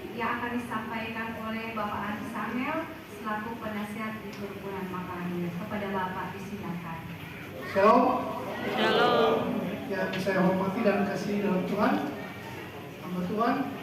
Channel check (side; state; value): both; identical; correlation 1.00